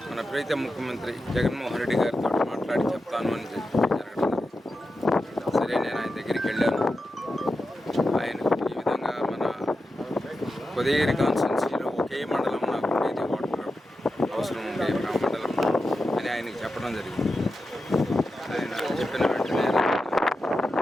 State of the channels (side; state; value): both; normal; correlation 0.90